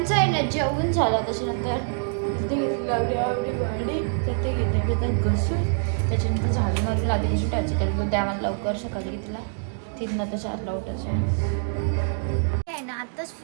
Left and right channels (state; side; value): silent; left; digital silence